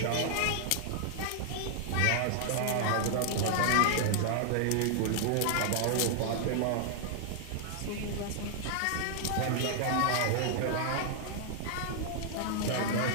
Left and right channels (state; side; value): different; both; correlation -0.01